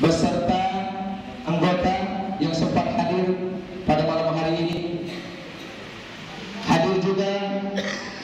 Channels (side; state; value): both; identical; correlation 1.00